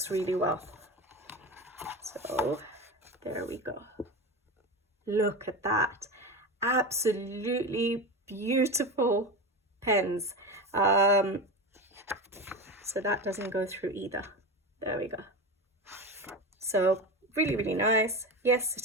really well. So there we go. Look at that. Absolutely beautiful pens. So that doesn't go through either. There we go. So really, really nice. Yes,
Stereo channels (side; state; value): both; normal; correlation 0.23